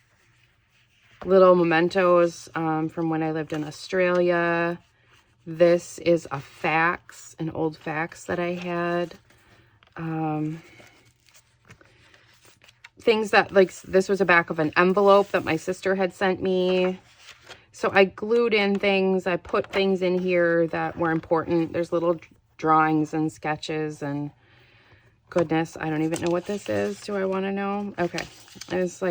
little mementos from when I lived in Australia. This is a fax, an old fax that I had. Things that, like, this was a back of an envelope that my sister had sent me. So I glued in things. I put things in here that were important. There's little drawings and sketches and goodness, I don't even know what this is. Do I want to know? Okay. It's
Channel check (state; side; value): identical; both; correlation 1.00